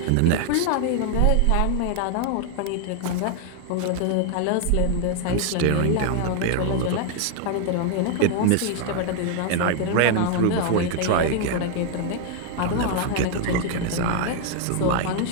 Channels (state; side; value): different; both; correlation 0.00